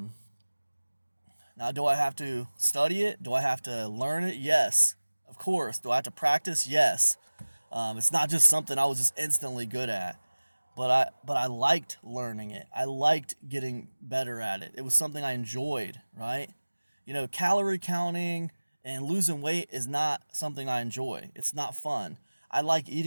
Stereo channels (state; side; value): inverted; both; correlation -1.00